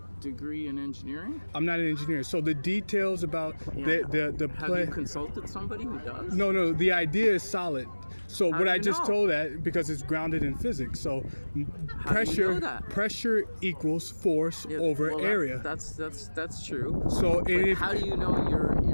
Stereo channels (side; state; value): both; inverted; correlation -1.00